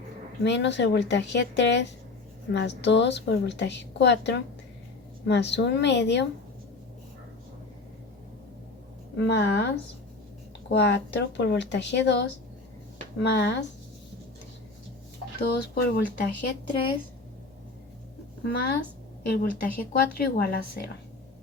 menos el voltaje 3 más 2 por el voltaje 4 más 1 medio más 4 por voltaje 2 más 2 por voltaje 3 más el voltaje 4 igual a 0.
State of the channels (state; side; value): quieter; right; 3.5 dB